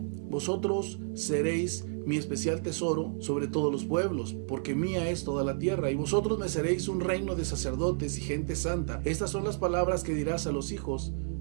vosotros seréis mi especial tesoro sobre todos los pueblos, porque mía es toda la tierra, y vosotros me seréis un reino de sacerdotes y gente santa. Estas son las palabras que dirás a los hijos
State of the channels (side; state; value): left; silent; 57 dB below the other